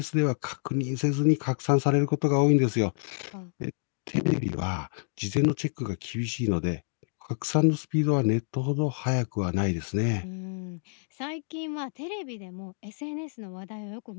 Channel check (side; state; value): right; silent; digital silence